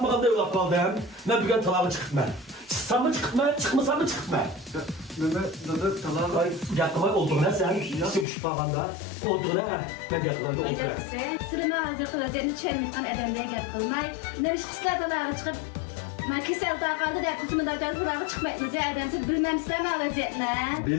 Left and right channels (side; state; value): right; drops out; at 8.2 s